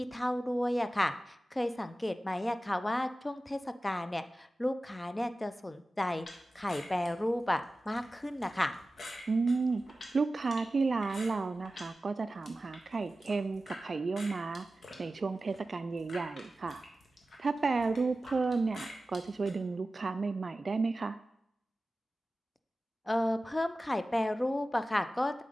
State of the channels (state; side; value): normal; both; correlation 0.95